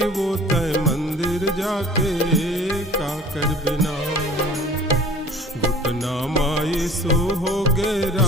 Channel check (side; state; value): both; normal; correlation 0.47